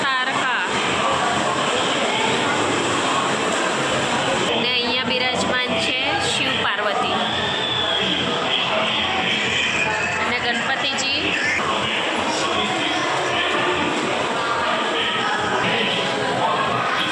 તારકા. અને અહીંયા બિરાજમાન છે શિવ પાર્વતી અને ગણપતિજી.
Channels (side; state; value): both; identical; correlation 1.00